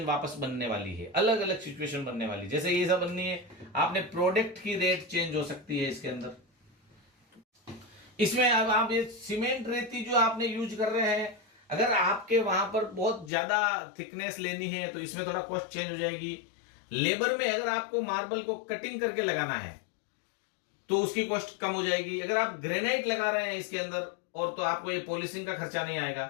वापस बनने वाली है, अलग अलग सिचुएशन बनने वाली। जैसे ये सब बननी है, आपने प्रोडक्ट की रेट चेंज हो सकती है इसके अंदर। इसमें अब आप ये सीमेंट रेती जो आपने यूज कर रहे हैं, अगर आपके वहां पर बहुत ज्यादा थिकनेस लेनी है तो इसमें थोड़ा कॉस्ट चेंज हो जाएगी। लेबर में अगर आपको मार्बल को कटिंग करके लगाना है तो उसकी कॉस्ट कम हो जाएगी। अगर आप ग्रेनाइट लगा रहे हैं इसके अंदर और तो आपको ये पॉलिशिंग का खर्चा नहीं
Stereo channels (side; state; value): right; drops out; at 13.3 s